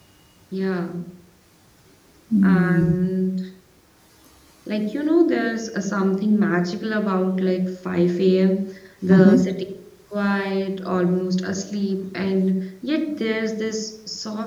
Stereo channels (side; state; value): both; identical; correlation 1.00